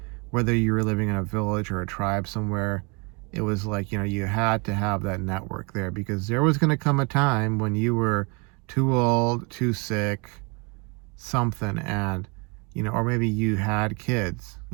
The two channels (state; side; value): quieter; left; 31.5 dB